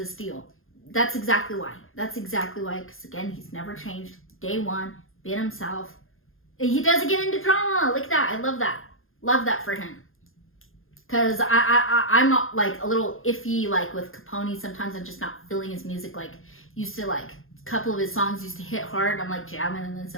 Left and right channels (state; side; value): late; right; 0.60 ms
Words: steel. That's exactly why. Because again, he's never changed. Day one, been himself. He doesn't get into drama. Look at that. I love that. Love that for him. Because I'm not like a little iffy like with Capone. Sometimes I'm just not feeling his music. Like used to like a couple of his songs used to hit hard. I'm like jamming, and then